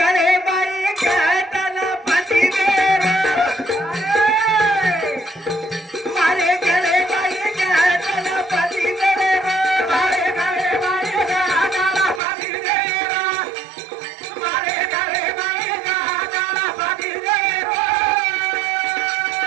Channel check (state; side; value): drops out; left; at 12.2 s